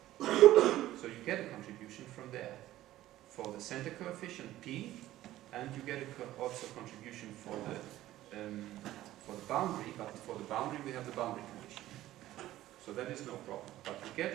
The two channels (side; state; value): left; quieter; 14.7 dB